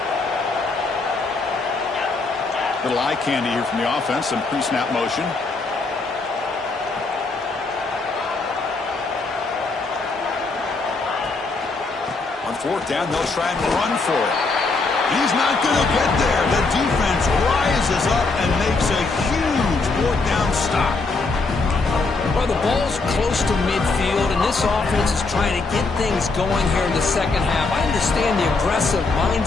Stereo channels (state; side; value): quieter; right; 3.8 dB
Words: Little eye candy here from the offense. Some pre-snap motion. Fourth down, they'll try and run for it. He's not going to get there. The defense rises up and makes a huge fourth down stop. Well, the ball's close to midfield, and this offense is trying to get things going here in the second half. I understand the aggressive